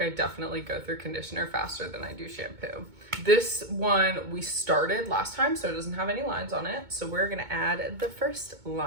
definitely go through conditioner faster than I do shampoo. This one we started last time, so it doesn't have any lines on it. So we're gonna add the first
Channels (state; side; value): late; left; 2.2 ms